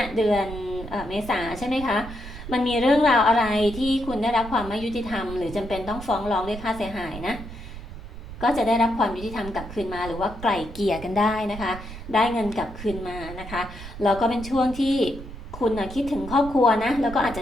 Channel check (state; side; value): noise; right; rumble, 12 dB below the sound